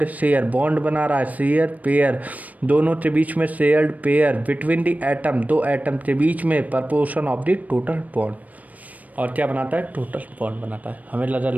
share, bond बना रहा है, शेयर पेयर, दोनों के बीच में shared pair, between the atom, दो एटम के बीच में, proportion of the total bond. और क्या बनाता है, टोटल बॉन्ड बनाता है। हमें लगा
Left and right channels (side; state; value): left; late; 0.074 ms